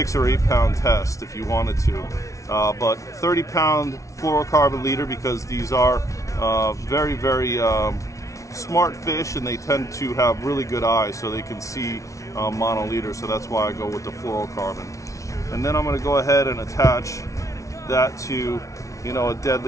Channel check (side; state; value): right; late; 0.15 ms